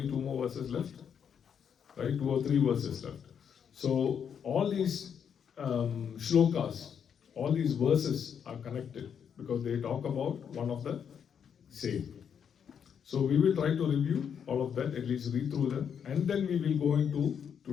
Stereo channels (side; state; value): right; quieter; 7.7 dB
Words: 2 more verses left, right? 2 or 3 verses left. So all these shlokas, all these verses are connected because they talk about one of the same. So we will try to review all of that, at least read through them, and then we will go into